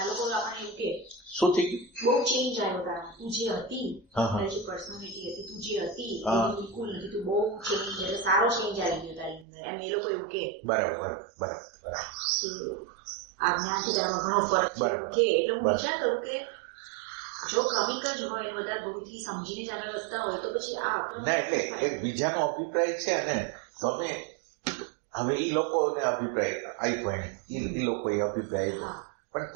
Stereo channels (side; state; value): left; drops out; at 9.5 s